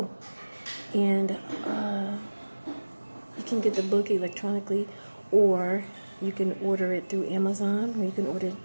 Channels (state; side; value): inverted; both; correlation -1.00